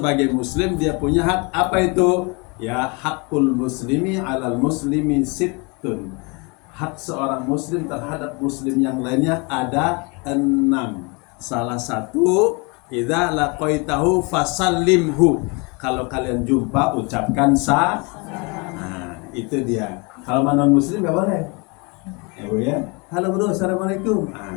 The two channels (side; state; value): right; quieter; 30.1 dB